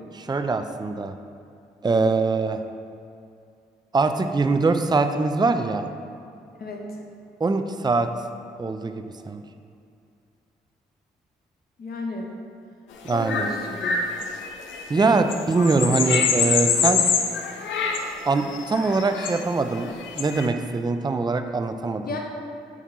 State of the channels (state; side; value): normal; both; correlation 0.65